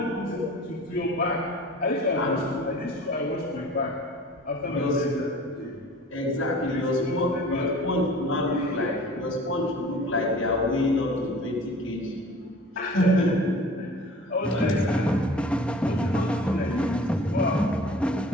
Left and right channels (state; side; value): normal; both; correlation 0.44